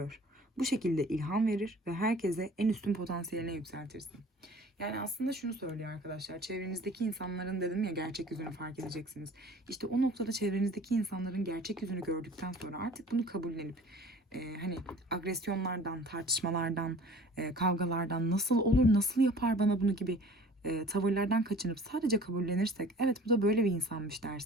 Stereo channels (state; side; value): normal; both; correlation 0.47